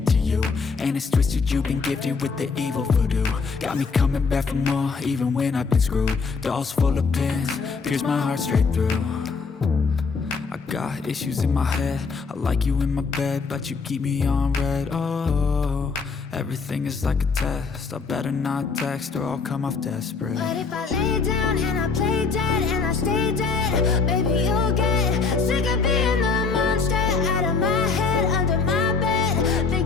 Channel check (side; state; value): right; quieter; 4.8 dB